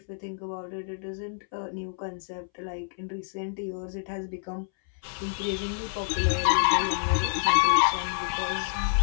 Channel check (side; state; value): right; silent; 59 dB below the other